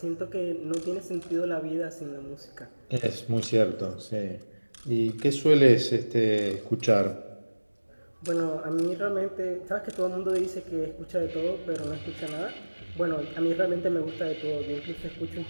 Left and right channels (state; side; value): inverted; both; correlation -1.00